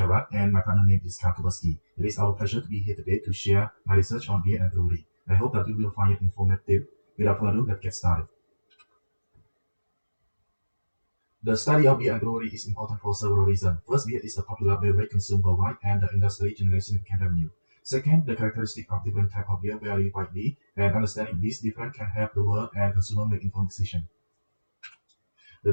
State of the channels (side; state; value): both; inverted; correlation -1.00